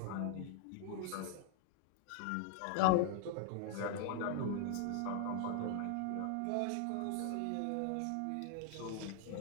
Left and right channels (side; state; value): both; different; correlation 0.00